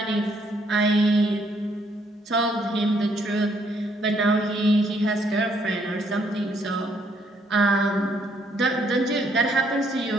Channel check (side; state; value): both; normal; correlation 0.69